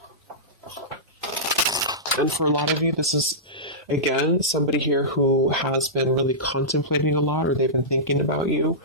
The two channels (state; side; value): normal; both; correlation -0.16